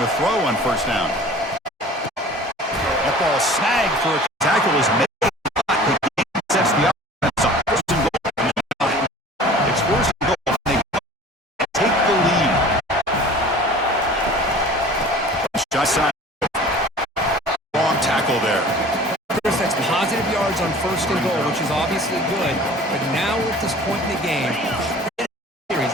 throw on first down. That ball snagged for a tackle is made. Sets the offense up. First and goal. It's first and goal. They take the lead. Shot side. Wrong tackle there. Chris, that's positive yards on first and goal, which is obviously good. But now we're at this point in the game.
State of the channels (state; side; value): normal; both; correlation 0.44